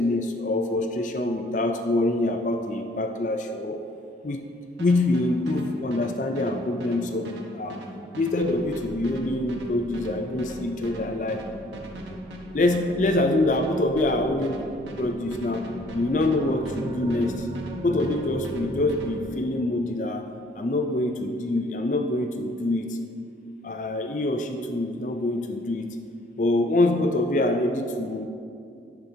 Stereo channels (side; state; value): both; normal; correlation 0.60